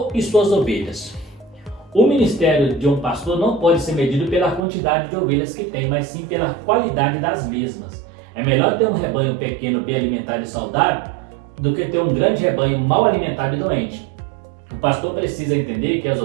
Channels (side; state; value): left; drops out; at 4.6 s